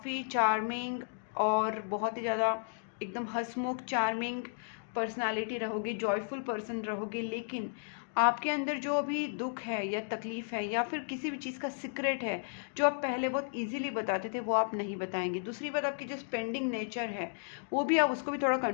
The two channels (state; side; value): silent; right; digital silence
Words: चार्मिंग और बहुत ही ज़्यादा एकदम हंसमुख चार्मिंग पर्सनालिटी रहोगे, जॉयफुल पर्सन रहोगे, लेकिन आपके अंदर जो अभी दुख है या तकलीफ है या फिर किसी भी चीज़ का सीक्रेट है, जो आप पहले बहुत इजीली बताते थे, वो आप नहीं बताएंगे। दूसरी बात, आपकी जो स्पेंडिंग नेचर है, वो भी आप उसको भी थोड़ा